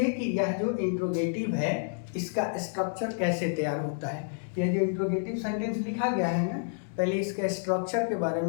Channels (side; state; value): right; silent; digital silence